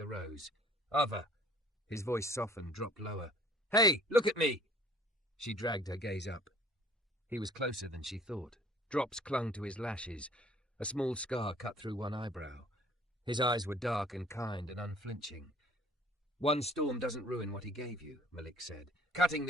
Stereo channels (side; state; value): both; normal; correlation 0.54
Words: rose. "Ava." His voice softened, dropped lower. "Hey, look at me!" She dragged her gaze up. He was closer than she thought. Drops clung to his lashes. A small scar cut through one eyebrow. His eyes were dark and kind and unflinching. "One storm doesn't ruin what he gave you," Malik said. "Cutting